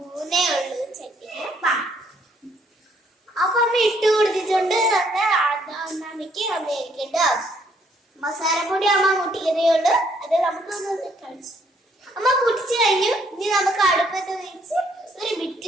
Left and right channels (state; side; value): normal; both; correlation 0.68